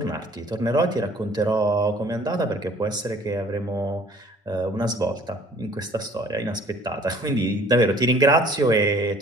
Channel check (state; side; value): normal; both; correlation 0.54